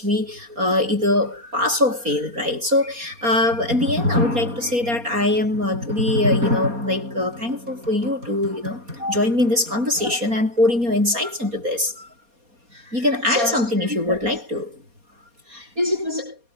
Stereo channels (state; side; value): late; left; 4.2 ms